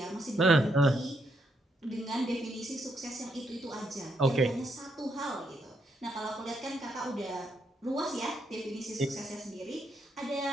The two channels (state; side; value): normal; both; correlation 0.77